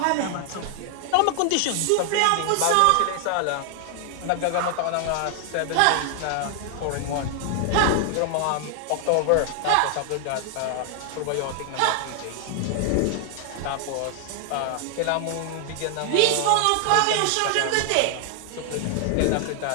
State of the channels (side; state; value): both; different; correlation 0.00